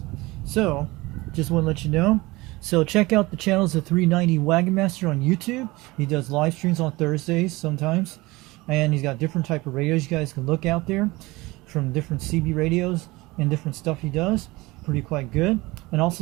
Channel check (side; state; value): left; quieter; 21.5 dB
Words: So just want to let you know. So check out the channels of 390 Wagon Master on YouTube. He does live streams on Thursdays sometimes. And he's got different type of radios you guys can look out there from different CB radios and different stuff he does. Pretty quite good. And